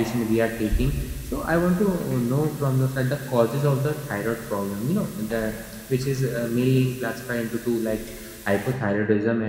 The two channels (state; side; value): identical; both; correlation 1.00